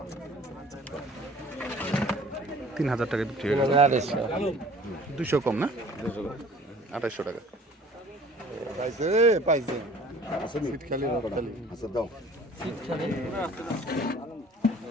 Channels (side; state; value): both; normal; correlation 0.49